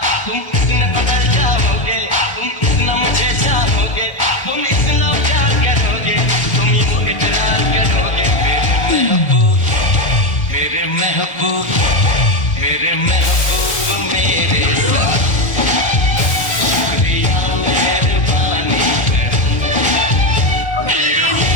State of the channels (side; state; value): right; late; 1.3 ms